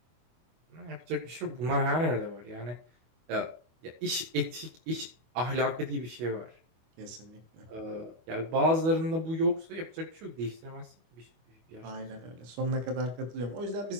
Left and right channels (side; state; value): left; late; 25 ms